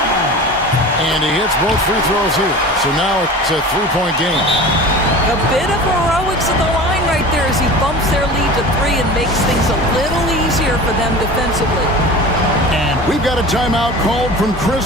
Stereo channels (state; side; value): normal; both; correlation 0.36